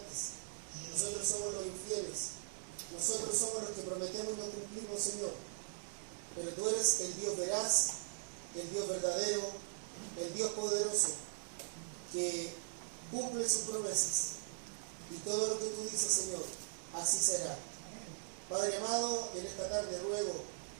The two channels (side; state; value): left; silent; digital silence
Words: Nosotros somos los infieles. Nosotros somos los que prometemos y no cumplimos, Señor. Pero tú eres el Dios veraz, el Dios verdadero, el Dios poderoso, que cumple sus promesas. Y todo lo que tú dices, Señor, así será. Padre amado, en esta tarde ruego